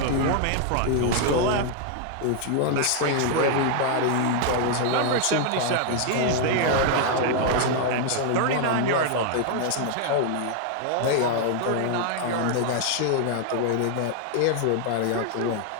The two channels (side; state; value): both; different; correlation 0.00